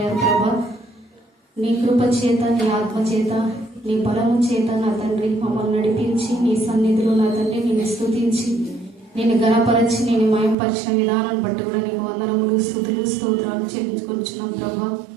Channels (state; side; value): drops out; left; at 10.6 s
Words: ప్రభా. నీ కృప చేత నీ ఆత్మ చేత నీ బలము చేత నా తండ్రి మమ్మల్ని నడిపించి నీ సన్నిధిలో నా తండ్రి నేను స్తుతించి నేను గణపరచి నేను మయంపరిచిన విధానాన్ని బట్టి కూడా నీకు వందనములు స్తుతులు స్తోత్రాలు చెల్లించుకొచ్చున్నాం ప్రభా.